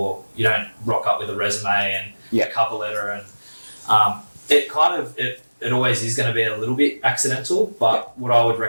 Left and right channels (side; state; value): both; inverted; correlation -1.00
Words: you don't rock up with a resume and a cover letter, and it always is going to be a little bit accidental, but what I would